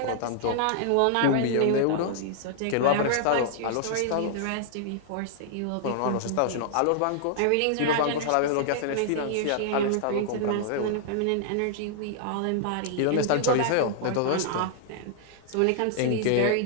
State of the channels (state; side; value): different; both; correlation -0.01